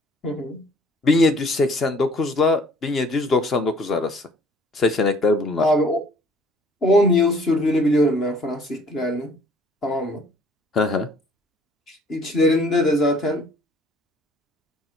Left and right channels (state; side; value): normal; both; correlation 0.57